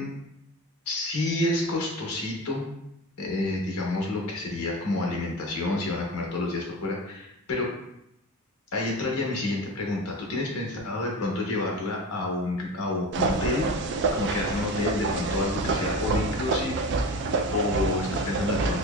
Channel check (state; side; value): normal; both; correlation 0.29